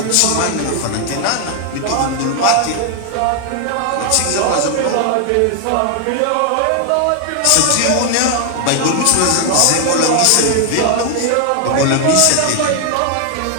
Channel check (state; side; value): different; both; correlation 0.00